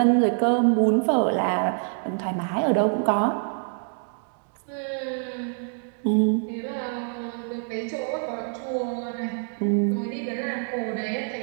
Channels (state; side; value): silent; left; 61 dB below the other